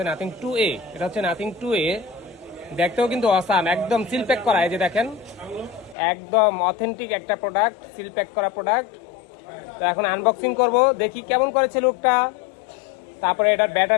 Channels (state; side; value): drops out; right; at 6.0 s